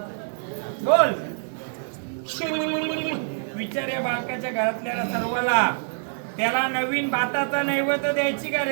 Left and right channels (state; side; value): silent; left; 59 dB below the other